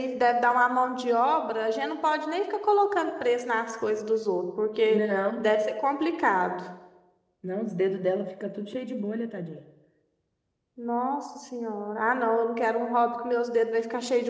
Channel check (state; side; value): identical; both; correlation 1.00